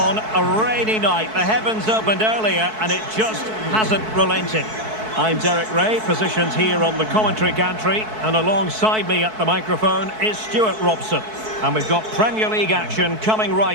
a rainy night. The heavens opened earlier and it just hasn't relented. I'm Derek Ray, positioned here on the commentary gantry, and alongside me at the microphone is Stuart Robson. And we've got Premier League action coming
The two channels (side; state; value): left; late; 4.6 ms